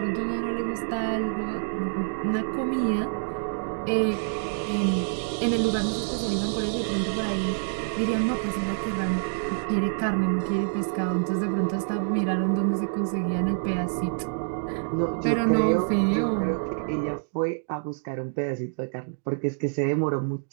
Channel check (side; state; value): left; silent; digital silence